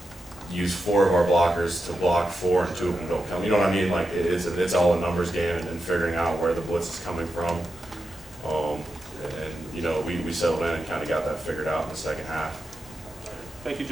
use 4 of our blockers to block 4 and 2 of them don't come. You know what I mean? Like, it's all a numbers game and figuring out where the blitz is coming from. And you know, we settled in and kind of got that figured out in the second half. Thank you,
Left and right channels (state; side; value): normal; both; correlation 0.88